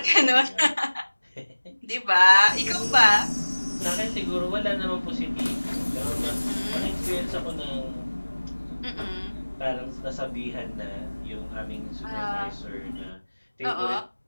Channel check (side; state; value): both; inverted; correlation -1.00